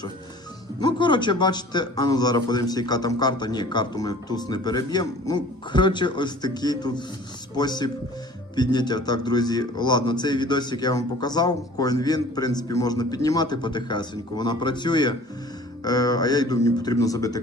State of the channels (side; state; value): both; normal; correlation 0.47